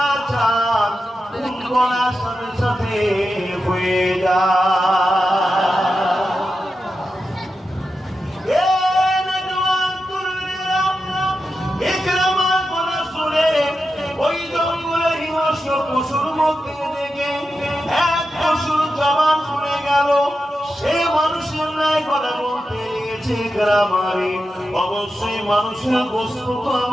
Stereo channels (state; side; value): normal; both; correlation 0.90